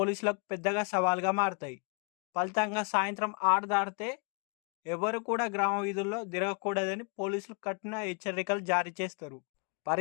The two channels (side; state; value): right; quieter; 36.4 dB